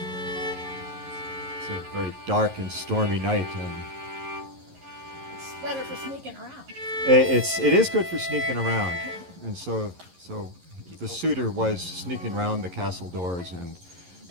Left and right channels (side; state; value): left; late; 11 ms